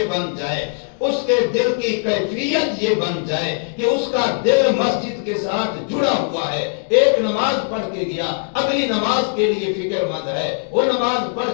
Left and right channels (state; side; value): silent; right; digital silence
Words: بن جائے، اس کے دل کی کیفیت یہ بن جائے کہ اس کا دل مسجد کے ساتھ جڑا ہوا ہے، ایک نماز پڑھ کے گیا، اگلی نماز کے لیے فکر مند ہے، وہ نماز پڑھ